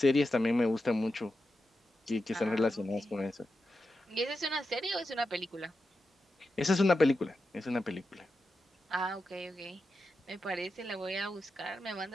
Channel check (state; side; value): normal; both; correlation 0.89